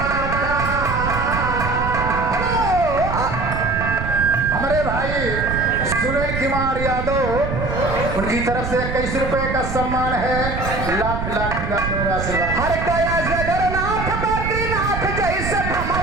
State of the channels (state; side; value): noise; right; rumble, 4 dB below the sound